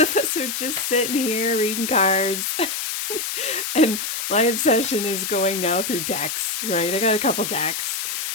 us are just sitting here reading cards. And my obsession is going now through decks, right? I got a couple decks.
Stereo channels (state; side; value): noise; left; hiss, 3 dB below the sound